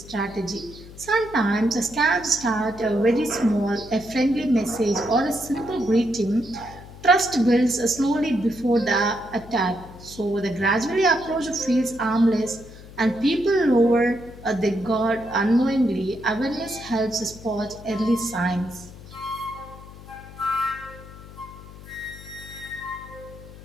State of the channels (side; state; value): left; noise; hum, 17 dB below the sound